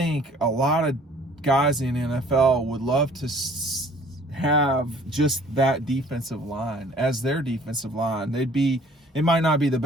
a lot of guys in the NFL would love to have just that defensive line as their defensive line. It might not be the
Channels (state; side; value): normal; both; correlation 0.53